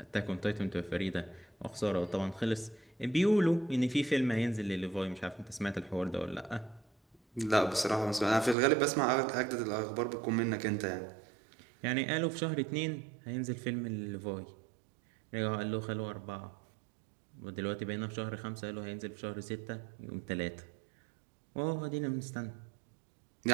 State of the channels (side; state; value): left; drops out; at 8.6 s